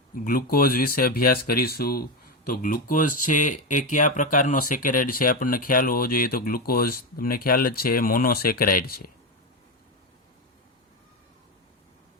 ગ્લુકોઝ વિશે અભ્યાસ કરીશું. તો ગ્લુકોઝ છે એ કયા પ્રકારનો સેકેરાઇડ છે આપણને ખ્યાલ હોવો જોઈએ. તો ગ્લુકોઝ તમને ખ્યાલ જ છે મોનોસેકેરાઇડ છે.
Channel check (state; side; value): normal; both; correlation 0.12